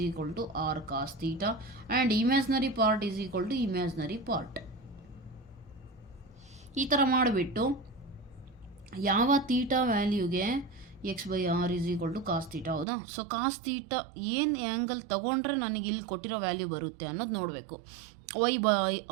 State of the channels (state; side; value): drops out; left; at 12.9 s